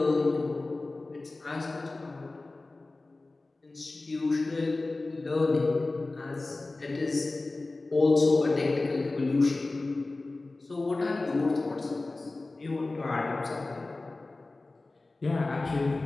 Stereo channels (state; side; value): quieter; right; 3.2 dB